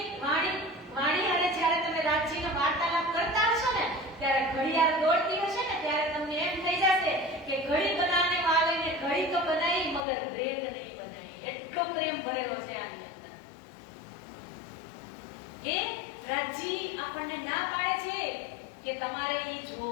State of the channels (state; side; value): drops out; right; at 10.1 s